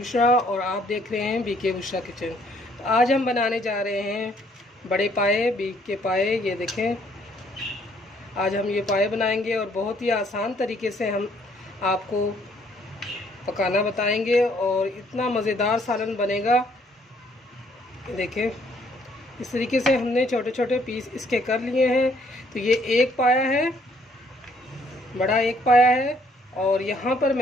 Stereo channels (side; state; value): both; normal; correlation 0.65